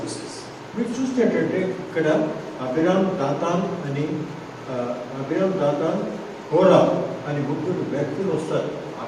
మీరు చూసినట్టంటే ఇక్కడ అబిరామ్ దాతాన్ కోరా అని ముగ్గురు వ్యక్తులు వస్తారు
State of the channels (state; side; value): identical; both; correlation 1.00